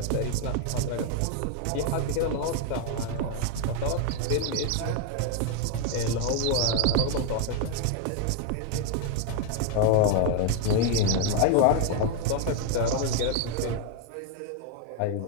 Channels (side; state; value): both; different; correlation 0.00